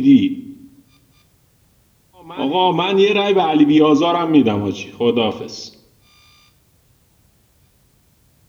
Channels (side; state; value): both; identical; correlation 1.00